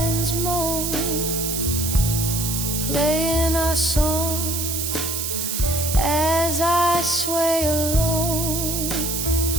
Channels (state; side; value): noise; right; hiss, 2 dB below the sound